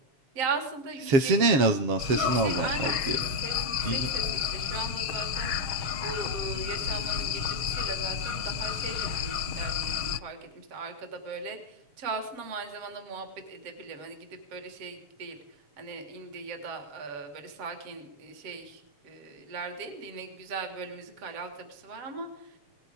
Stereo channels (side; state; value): left; late; 7.3 ms